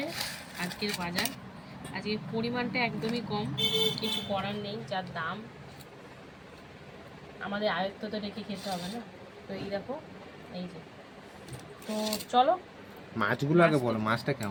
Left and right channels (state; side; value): identical; both; correlation 1.00